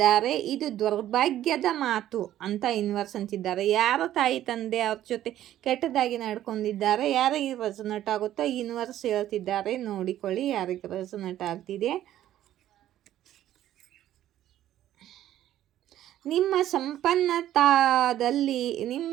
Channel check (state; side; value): quieter; left; 12.6 dB